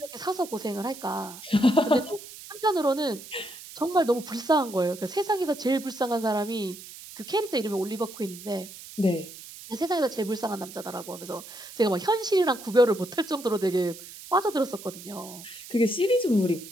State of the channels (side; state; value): right; noise; hiss, 15 dB below the sound